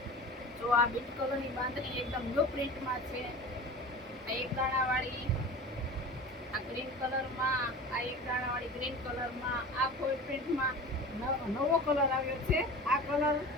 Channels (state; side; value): normal; both; correlation 0.35